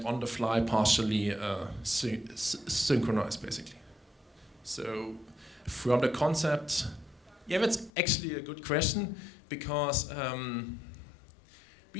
on the fly partially synchronized, basically. So from the concept, yeah, that's actually a good question, because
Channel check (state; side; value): drops out; right; at 7.9 s